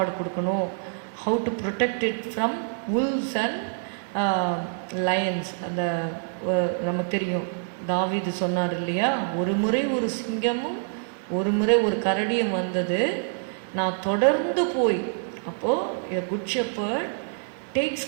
கொடுக்கணும், how to protect it from wolves and lions. அந்த நமக்கு தெரியும், தாவீது சொன்னார் இல்லையா, ஒரு முறை ஒரு சிங்கமும் ஒரு முறை ஒரு கரடியும் வந்தது, நான் தொடர்ந்து போய். அப்போது good shepherd takes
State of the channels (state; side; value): silent; left; 59 dB below the other